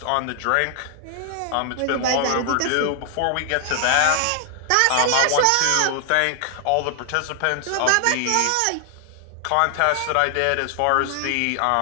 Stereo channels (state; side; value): different; both; correlation 0.00